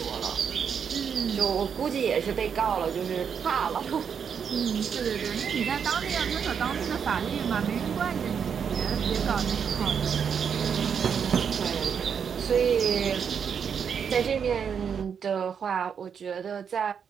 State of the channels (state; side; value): quieter; left; 7.1 dB